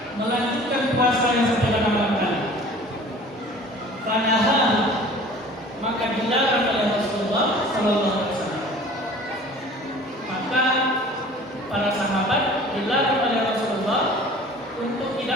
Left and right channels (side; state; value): both; normal; correlation 0.46